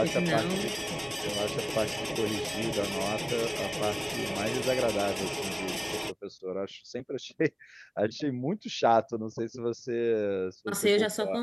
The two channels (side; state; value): both; identical; correlation 1.00